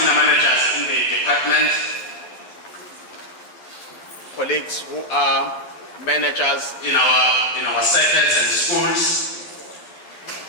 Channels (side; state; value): right; late; 11 ms